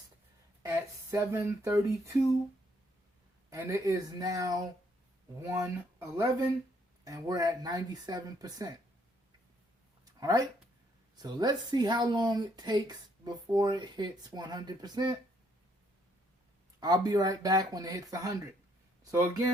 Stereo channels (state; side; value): normal; both; correlation 0.69